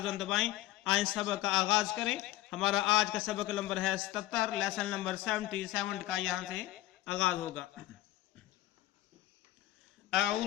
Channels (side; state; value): right; quieter; 15.9 dB